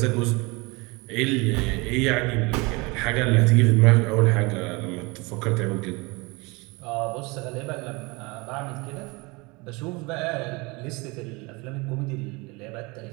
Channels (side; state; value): left; quieter; 26.1 dB